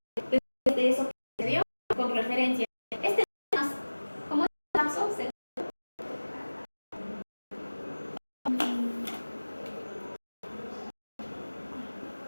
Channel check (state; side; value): inverted; both; correlation -1.00